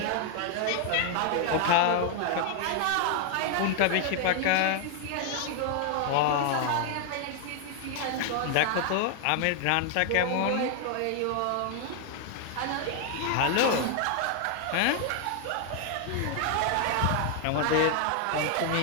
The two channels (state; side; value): different; both; correlation 0.00